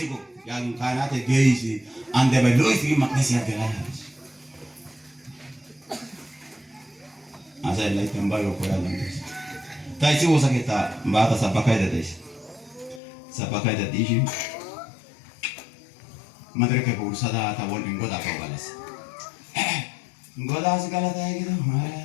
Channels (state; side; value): drops out; right; at 13.0 s